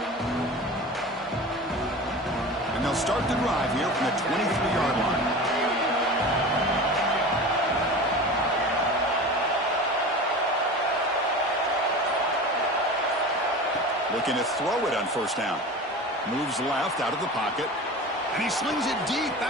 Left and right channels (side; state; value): both; normal; correlation 0.33